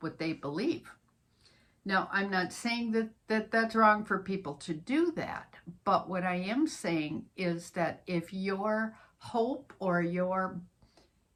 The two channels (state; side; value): identical; both; correlation 1.00